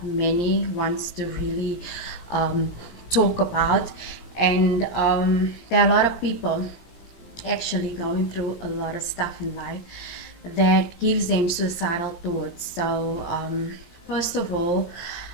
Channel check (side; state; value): right; late; 17 ms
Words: many wants to really um, talk about, and there are a lot of people actually going through a lot of stuff in life that gives them suicidal thoughts. So first of all,